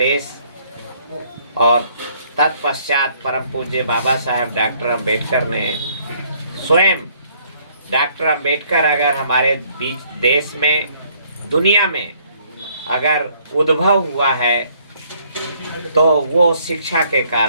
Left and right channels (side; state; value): both; inverted; correlation -0.65